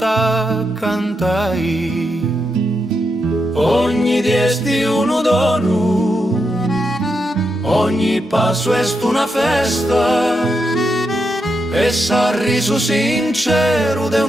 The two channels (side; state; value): both; normal; correlation 0.84